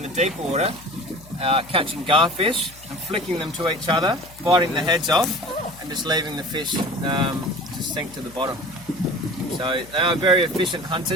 the deep water, catching garfish and flicking them to each other, biting the heads off and just leaving the fish to sink to the bottom. So they are very efficient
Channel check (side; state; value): left; noise; hum, 21 dB below the sound